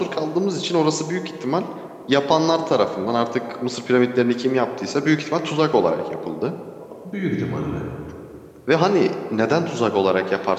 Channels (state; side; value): identical; both; correlation 1.00